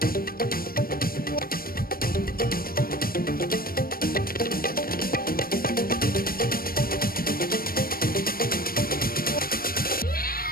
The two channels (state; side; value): late; right; 0.43 ms